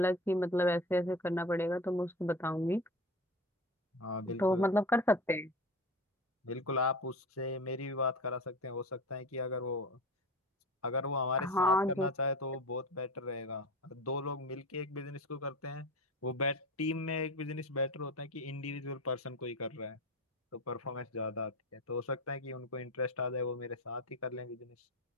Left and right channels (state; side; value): normal; both; correlation 0.31